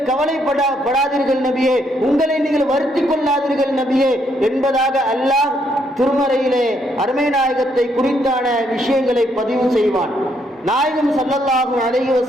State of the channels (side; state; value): both; normal; correlation 0.73